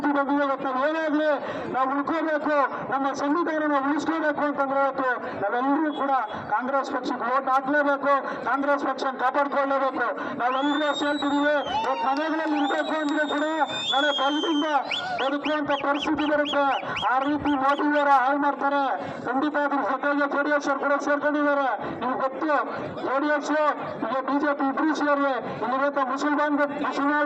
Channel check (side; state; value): both; identical; correlation 1.00